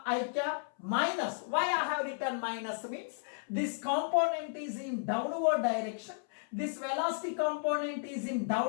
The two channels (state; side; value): silent; right; 55 dB below the other